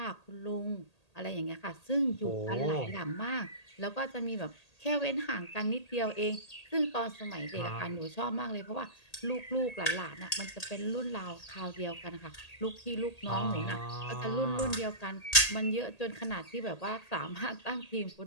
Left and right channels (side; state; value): right; late; 1.8 ms